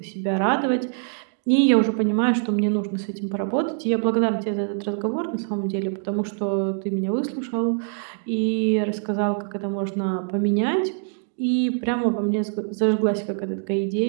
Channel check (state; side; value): silent; left; digital silence